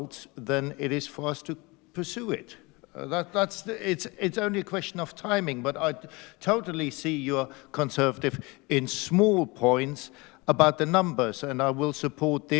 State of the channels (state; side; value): quieter; right; 25.3 dB